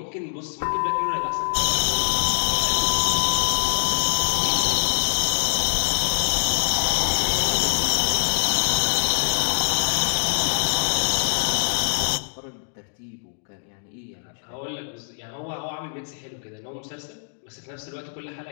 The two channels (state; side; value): silent; right; digital silence